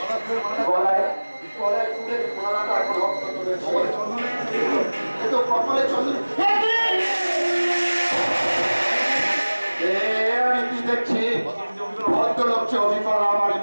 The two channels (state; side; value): inverted; both; correlation -1.00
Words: গলায় গলায় তুলে গলাটা এখন রক্ত তুলেছে, কপালে চন্দন। আমি কি দেখছি? ভদ্রলোককে অভিজ্ঞতা আমারই